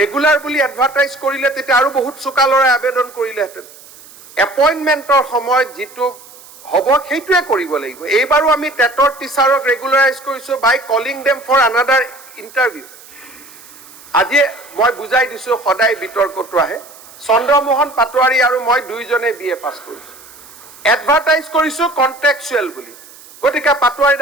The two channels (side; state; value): right; noise; hiss, 21 dB below the sound